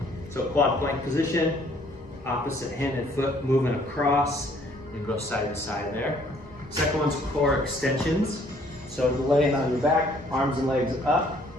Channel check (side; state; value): both; normal; correlation 0.61